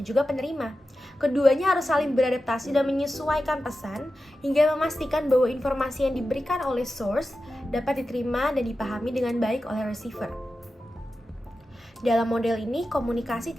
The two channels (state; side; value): normal; both; correlation 0.92